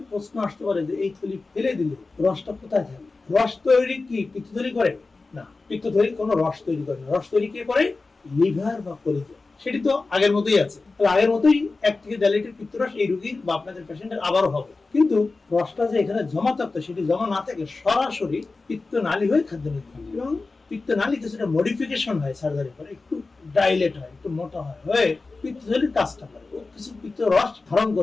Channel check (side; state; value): right; quieter; 3.7 dB